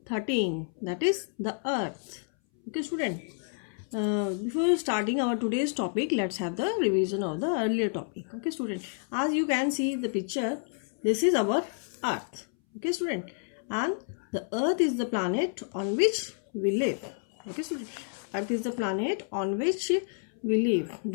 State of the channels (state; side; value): silent; right; 58 dB below the other